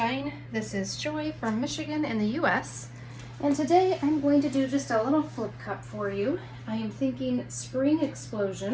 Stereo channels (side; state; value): both; identical; correlation 1.00